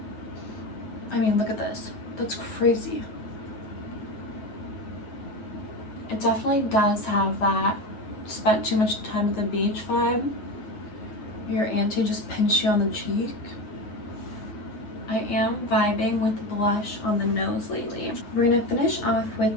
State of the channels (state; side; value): late; right; 9.5 ms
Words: I mean, look at this. That's crazy. It definitely does have that spent too much time at the beach vibe. Your auntie just pinched you on the cheek. I am vibing with blush on the nose lately. We're gonna finish off